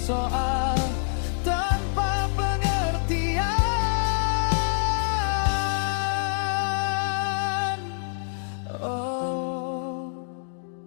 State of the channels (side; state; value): right; silent; digital silence